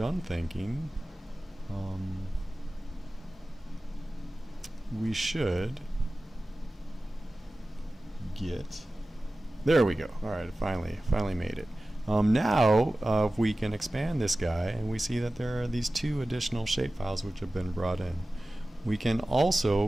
thinking, we should get, there we go. Alright, finally made it. Now if we can expand this guy, and we see that there are these two additional shapefiles which have been brought in. We can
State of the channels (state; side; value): normal; both; correlation 0.96